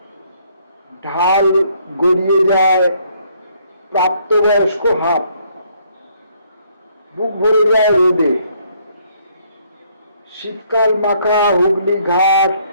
ঢাল গড়িয়ে যায় প্রাপ্তবয়স্ক হাত। বুক ভরে যায় রোদে। শীতকাল মাখা হুগলি ঘাট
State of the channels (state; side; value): inverted; both; correlation -0.67